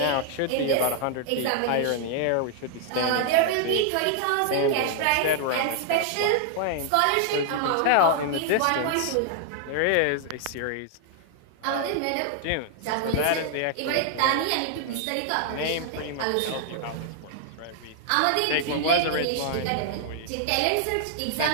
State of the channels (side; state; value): both; different; correlation 0.00